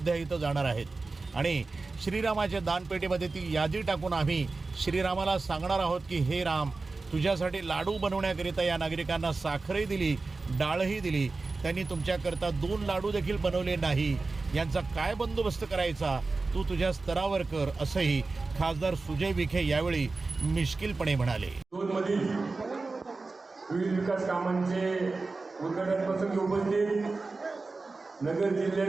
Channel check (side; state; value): left; quieter; 3.7 dB